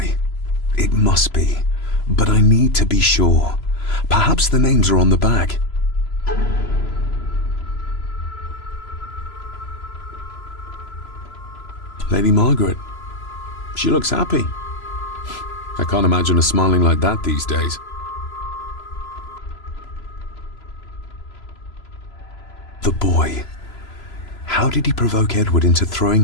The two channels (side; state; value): right; late; 3.0 ms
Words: It must be. But I need to be sure. Perhaps the names are on the bag. Lady Margaret. She looks happy. I can't imagine her smiling like that these days. The boy. How did he provoke Edward into throwing